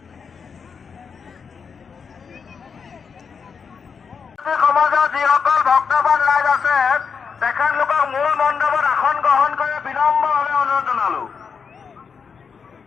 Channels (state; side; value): quieter; right; 6.0 dB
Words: সমাজৰ যিসকল ভক্তবান ৰাইজ আছে তেখেতলোকক মূল মণ্ডপত আসন গ্ৰহণ কৰি বিনম্ৰভাৱে অনুৰোধ জনালো।